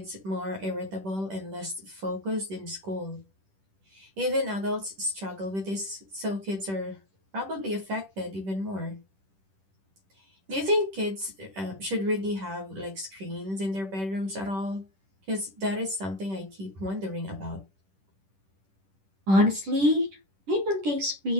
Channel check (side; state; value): left; late; 10 ms